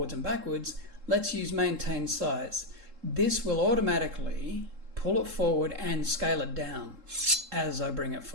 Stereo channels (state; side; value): late; left; 3.7 ms